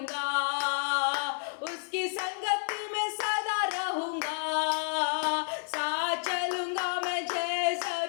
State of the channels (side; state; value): right; silent; digital silence